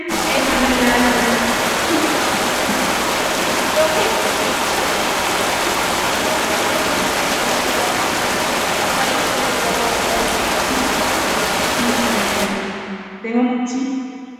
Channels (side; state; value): both; identical; correlation 1.00